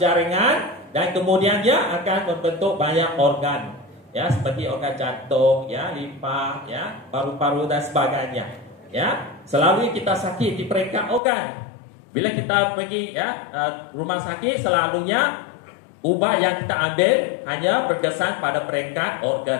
dan kemudian dia akan membentuk banyak organ. Ya, seperti organ jantung, ya, limfa, ya, paru-paru dan sebagainya. Ya, selalu kita sakit di peringkat organ. Bila kita pergi ya rumah sakit, selalunya ubat yang kita ambil hanya berkesan pada peringkat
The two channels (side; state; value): right; drops out; at 11.2 s